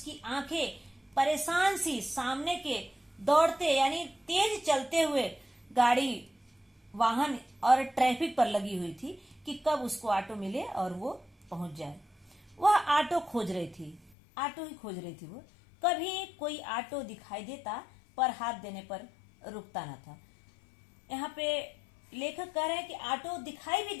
आंखें परेशान सी सामने के दौड़ते यानी तेज चलते हुए गाड़ी, वाहन और ट्रैफिक पर लगी हुई थी कि कब उसको ऑटो मिले और वो पहुंच जाए। वह ऑटो खोज रही थी, ऑटो ही खोज रही थी वो। कभी कोई ऑटो दिखाई देता पर हाथ देने पर रुकता न था। यहाँ पे लेखक कह रहे हैं कि ऑटो दिखाई भी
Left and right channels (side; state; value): right; drops out; at 14.1 s